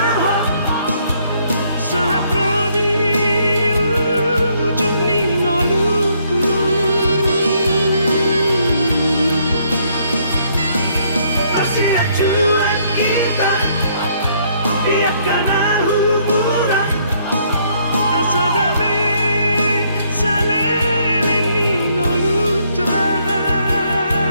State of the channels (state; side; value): inverted; both; correlation -0.68